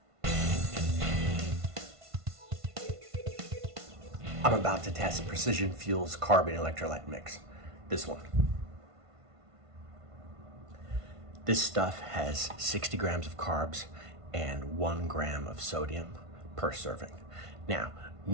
I'm about to test Precision Fuel's carb and electrolyte mix. This one. This stuff has 60 grams of carbs and 1 gram of sodium per serving. Now,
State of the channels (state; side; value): late; left; 1.5 ms